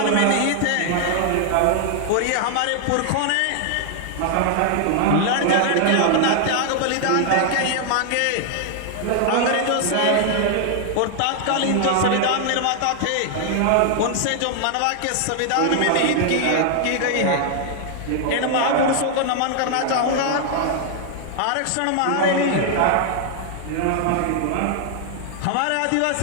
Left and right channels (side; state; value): both; different; correlation 0.00